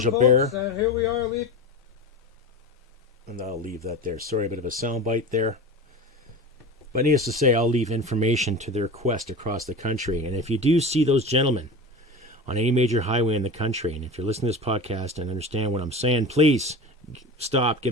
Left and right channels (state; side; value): normal; both; correlation 0.30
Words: Here we are, And I'll leave that there. Sorry, a bit of a soundbite there. But needless to say, I'll leave information to their quest across the country. And if you do see those gentlemen on any major highway in the country, and if you're listening to this podcast and understand what I'm saying, please stop, give